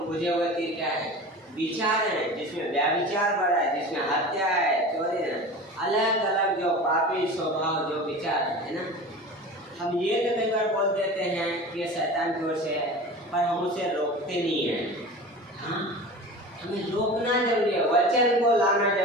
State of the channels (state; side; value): normal; both; correlation 0.34